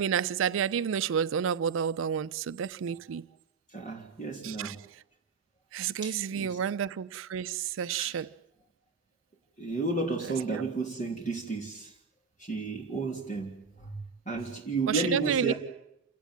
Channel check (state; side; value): quieter; left; 5.7 dB